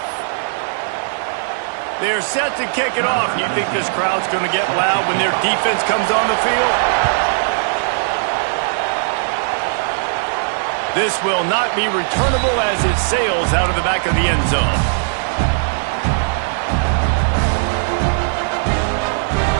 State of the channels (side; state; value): left; silent; 67 dB below the other